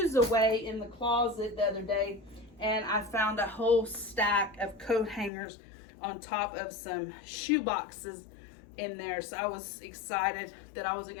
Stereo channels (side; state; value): right; drops out; at 5.3 s